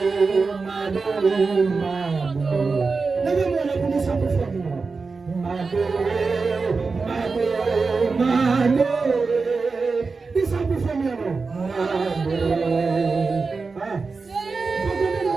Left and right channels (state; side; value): quieter; left; 4.4 dB